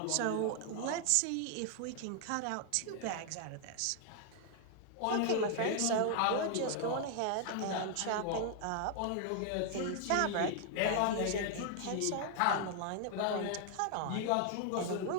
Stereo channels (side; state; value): both; different; correlation 0.00